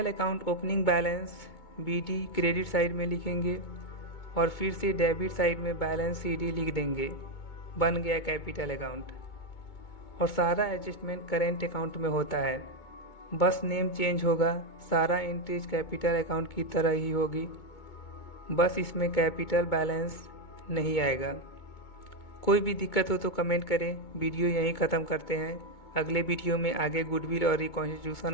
account opening balance BD credit side में लिखेंगे और फिर से डेबिट साइड में बैलेंस CD लिख देंगे, बन गया कैपिटल अकाउंट। और सारा एडजस्टमेंट करेंट अकाउंट में होता है, बस नेम चेंज होगा, सारा एंट्रीज कैपिटल अकाउंट की तरह ही होगी, बस इसमें कैपिटल बैलेंस नहीं आएगा। कोई भी दिक्कत हो तो कमेंट करें। वीडियो यहीं ख़त्म करते हैं। अगले वीडियो में आगे गुडविल और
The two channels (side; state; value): right; late; 2.2 ms